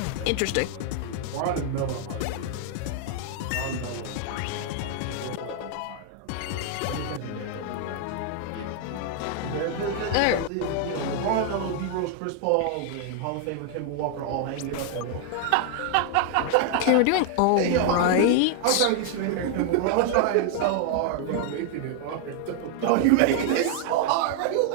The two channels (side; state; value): both; different; correlation 0.00